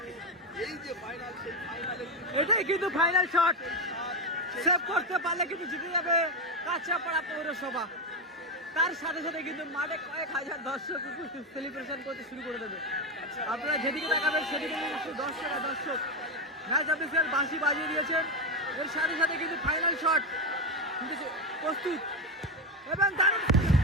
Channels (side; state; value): both; normal; correlation 0.11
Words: এই যে ফাইনাল, সেই ফাইনালে এটাই কিন্তু ফাইনাল শট। সেভ করতে পারলে কিন্তু জিতে যাবে কাঁচরাপাড়া পৌরসভা। তার সাথে সাথে কিন্তু মাঠে কয়েক হাজার দর্শক সেলিব্রেশন করতে শুরু করে দেবে। আপনারা যেদিকে তাকাবেন সেদিকে কিন্তু দর্শক ম্যাচ অফিসিয়াল বাঁশি বাজিয়ে দিয়েছেন। এর সাথে সাথে কিন্তু ফাইনাল শট কিন্তু প্রস্তুত এবং দারুণ।